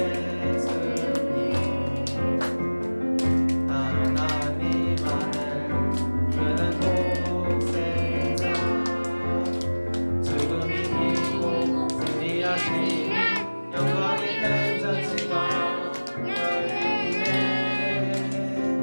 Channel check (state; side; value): inverted; both; correlation -1.00